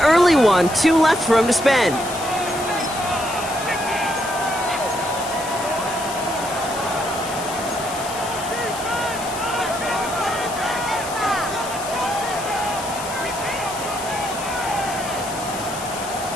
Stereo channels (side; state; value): left; noise; hiss, 11 dB below the sound